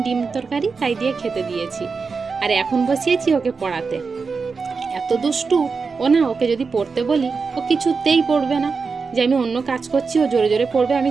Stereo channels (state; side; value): quieter; left; 4.8 dB